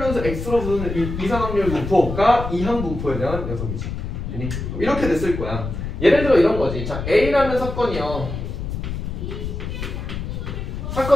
변수 x로 부르는 이산확률 분포가 이항 분포에 대한 녀석이지. 이렇게 됐을 거야. 예를 들어 이런 거지. 자, A라는 사건이요.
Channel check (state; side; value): noise; left; rumble, 5 dB below the sound